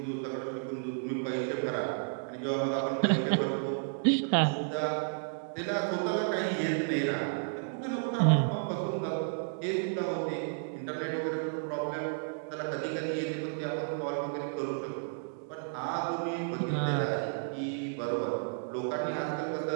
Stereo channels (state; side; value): silent; left; digital silence